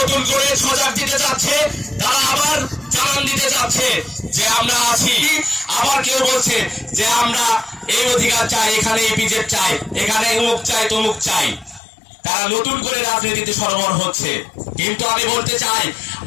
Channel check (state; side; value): drops out; right; at 11.8 s